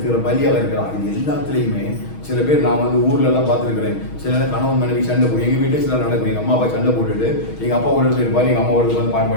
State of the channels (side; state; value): right; late; 6.3 ms